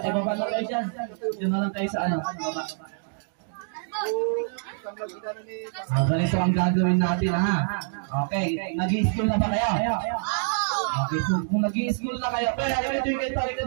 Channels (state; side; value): silent; left; digital silence